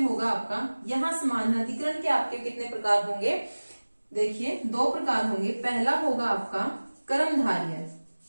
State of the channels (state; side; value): inverted; both; correlation -1.00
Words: आपका, यहाँ समानाधिकरण के आपके कितने प्रकार होंगे, देखिए 2 प्रकार होंगे। पहला होगा आपका कर्मधारय